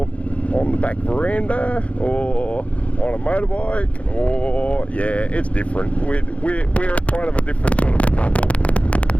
on the back veranda or on a motorbike, or yeah, it's different. We're kind of a different sort of a couple,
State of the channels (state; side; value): late; right; 0.064 ms